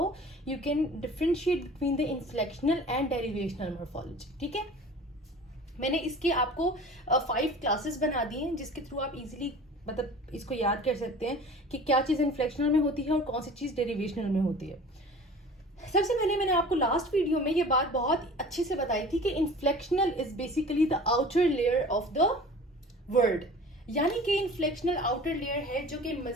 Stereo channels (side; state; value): both; normal; correlation 0.42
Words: you can differentiate between the inflectional and derivational morphology. ठीक है, मैंने इसके आपको 5 क्लासेस बना दी हैं जिसके थ्रू आप इजीली मतलब इसको याद कर सकते हैं कि क्या चीज़ इन्फ्लेक्शनल में होती है और कौन सी चीज़ डेरिवेशनल में होती है. सबसे पहले मैंने आपको लास्ट वीडियो में ये बात बहुत अच्छे से बताई थी कि inflectional is basically the outer layer of the word, यानी कि इन्फ्लेक्शनल आउटर लेयर है जो कि